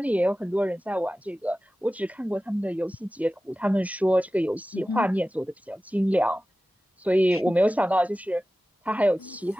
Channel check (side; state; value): both; normal; correlation 0.96